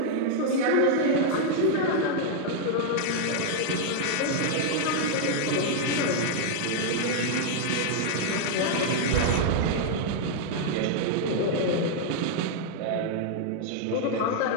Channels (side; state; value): both; different; correlation 0.00